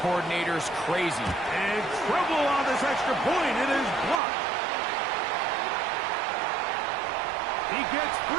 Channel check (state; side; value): drops out; left; at 4.2 s